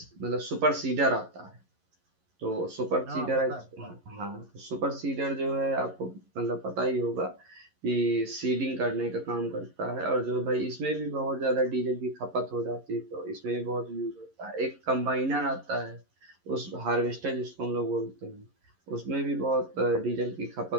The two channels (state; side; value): late; left; 11 ms